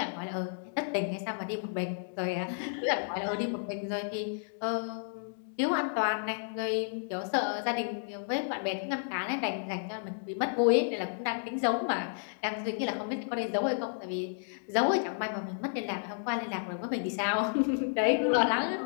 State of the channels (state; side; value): silent; right; digital silence